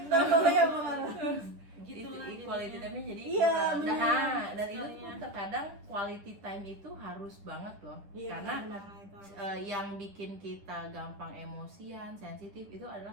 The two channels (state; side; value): late; left; 10 ms